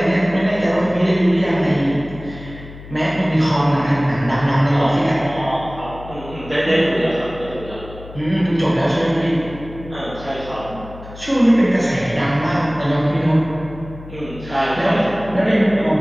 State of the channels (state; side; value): noise; left; hum, 16 dB below the sound